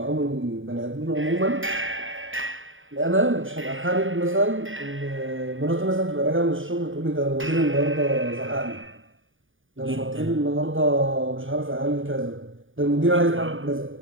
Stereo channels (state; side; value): late; left; 0.58 ms